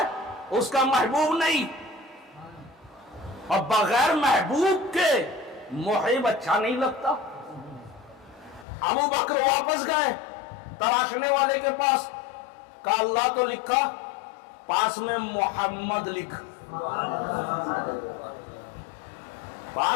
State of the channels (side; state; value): right; drops out; at 8.7 s